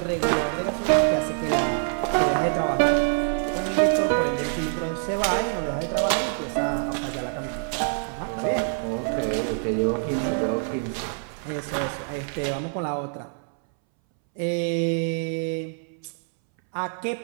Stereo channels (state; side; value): silent; left; 61 dB below the other